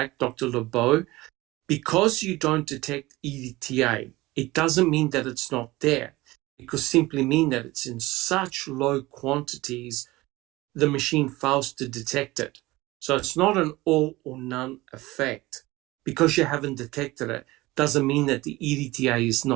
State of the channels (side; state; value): left; quieter; 19.8 dB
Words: Dr. Lebeau. Because you don't detect EDTA, it doesn't mean that it's not there. It could simply mean that it's in such low quantities, the machine fails to detect it. So it's not an all or none effect. Because you haven't detected it, doesn't mean that the EDTA is